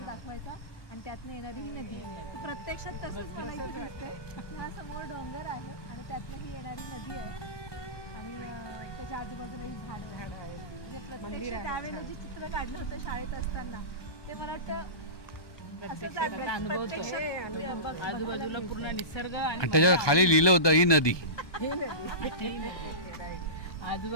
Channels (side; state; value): right; late; 1.2 ms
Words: दाखवायचा आणि त्यातनं येणारी ही नदी. प्रत्यक्षात तसंच मला इथे दिसतंय. हा समोर डोंगर आहे आणि त्यातनं ही येणारी नदी आहे आणि त्याच्या आजूबाजूला ही झाडं आहेत. म्हणजे प्रत्यक्ष त्यावेळेला जे चित्र काढलं होतं शाळेत असताना ते मला वाटतं आजूबाजूला पूर्ण निसर्ग आणि त्याच्या खाली लिहिलं होतं ही नदी.